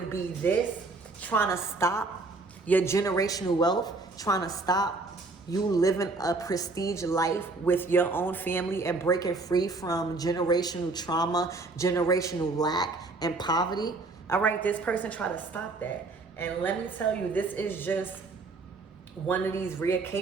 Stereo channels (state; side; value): quieter; left; 3.5 dB